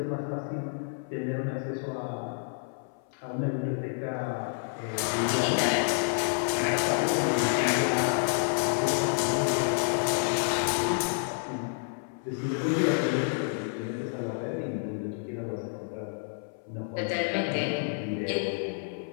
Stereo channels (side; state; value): right; silent; 58 dB below the other